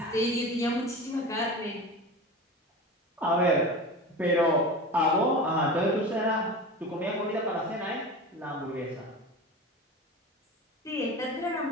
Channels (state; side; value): normal; both; correlation 0.31